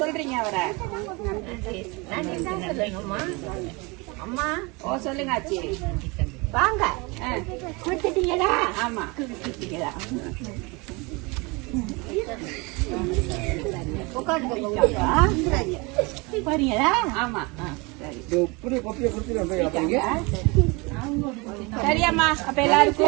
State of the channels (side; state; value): left; quieter; 27.1 dB